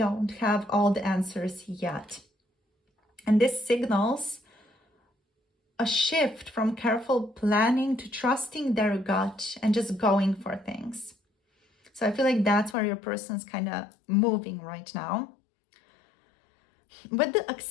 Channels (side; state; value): right; drops out; at 12.8 s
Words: have all the answers yet. And this signals a shift from careful planning to trusting their gut and just going for things. So I feel like that's where your person's kind of moving right now. With the